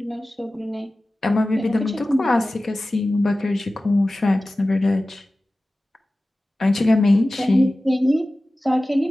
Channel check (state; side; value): normal; both; correlation 0.96